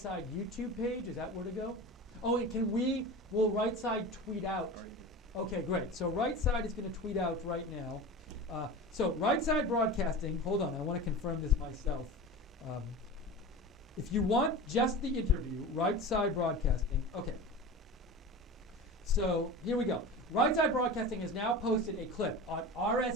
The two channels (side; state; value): both; normal; correlation 0.31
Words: YouTube page? Is that where to go? Oh, and will Right Side tweet out? Okay, great. So Right Side is going to tweet out right now. So Right Side Broadcasting, hold on, I want to confirm this myself. If you want just the interview, Right Side Broadcasting, okay. So here we go. Right Side Broadcasting has now posted a clip on